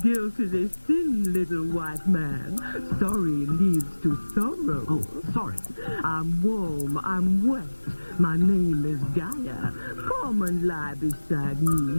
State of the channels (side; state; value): both; inverted; correlation -1.00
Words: Guilt is a sin, little white man. Sorry leads to sorrow. Oh, sorry. I'm warm, I'm wet. My name is Gaia. Come and lie beside